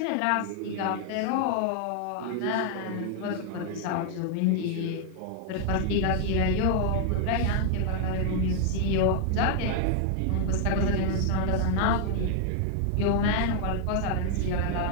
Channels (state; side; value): different; both; correlation 0.00